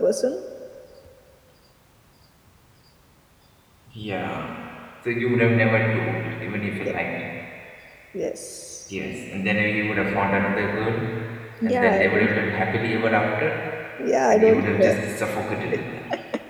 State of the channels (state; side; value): identical; both; correlation 1.00